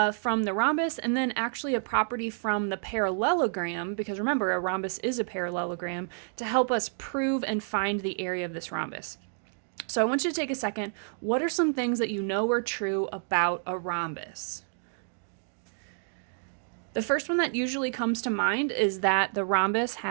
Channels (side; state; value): left; silent; digital silence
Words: the rhombus and then actually a property from the parallelogram, because remember, a rhombus is a parallelogram, to help us prove and find the area of this rhombus. So I want you to take a second. What are some things that you know are true about a rhombus? The first one that usually comes to mind is that the rhombus